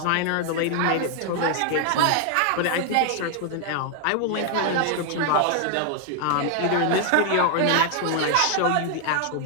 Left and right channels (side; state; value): both; different; correlation 0.00